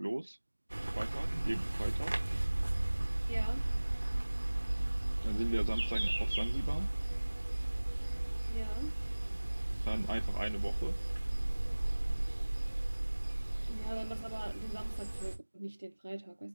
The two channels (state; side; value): inverted; both; correlation -1.00